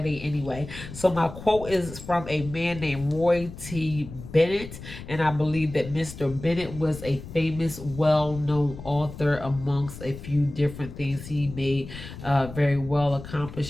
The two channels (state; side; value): noise; left; rumble, 13 dB below the sound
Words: anyway. So my quote is from a man named Roy T. Bennett, and I believe that Mr. Bennett was a famous, well-known author amongst a few different things. He made very well